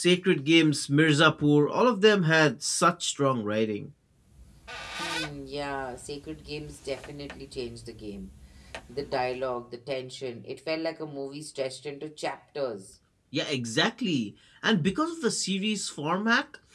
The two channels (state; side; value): identical; both; correlation 1.00